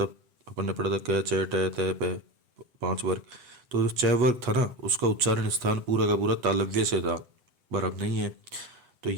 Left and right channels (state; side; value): late; left; 8.2 ms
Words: अपन ने पढ़ा था क च ट त प 5 वर्ग, तो जो च वर्ग था ना उसका उच्चारण स्थान पूरा का पूरा तालव्य से था, पर अब नहीं है। तो